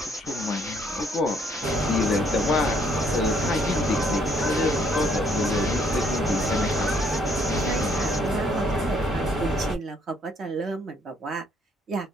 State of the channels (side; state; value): both; normal; correlation 0.67